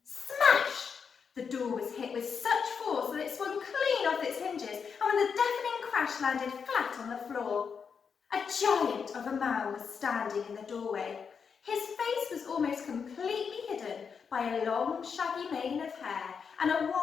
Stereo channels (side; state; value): right; quieter; 6.3 dB